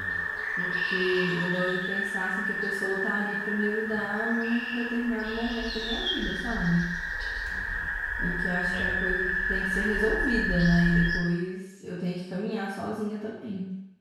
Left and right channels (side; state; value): both; identical; correlation 1.00